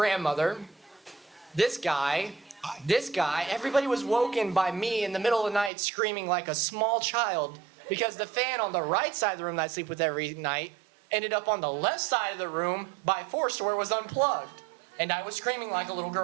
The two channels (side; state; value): left; drops out; at 5.7 s